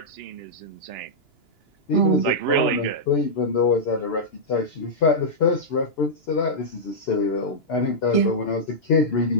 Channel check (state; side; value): late; right; 2.9 ms